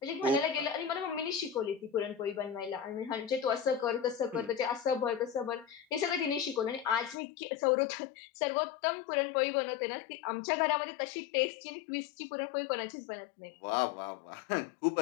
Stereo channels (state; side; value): drops out; right; at 7.2 s